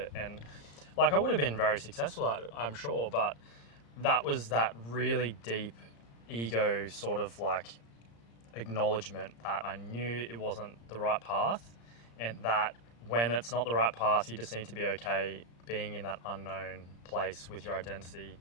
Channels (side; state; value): right; late; 34 ms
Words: And like, I would have been very successful at it, I'm sure, but that was that really deep ego sort of like acknowledgement that I knew it wasn't the right path, and that when it's not the right path, you just need to be okay being in that unknown place with your identity,